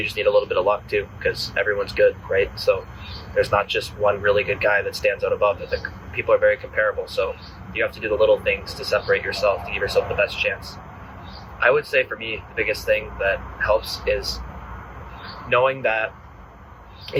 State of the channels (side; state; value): both; identical; correlation 1.00